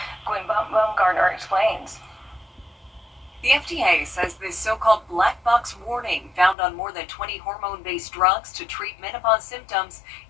Gwen Baumgartner explains. The FDA says this so-called black box warning found on more than 20 hormone-based drugs to treat menopause symptoms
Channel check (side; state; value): right; drops out; at 6.6 s